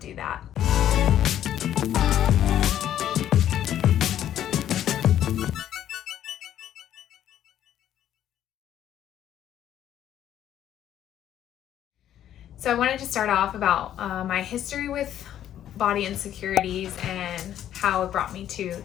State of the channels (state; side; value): quieter; right; 11.1 dB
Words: that. So I wanted to start off about my history with body insecurities and how it brought me to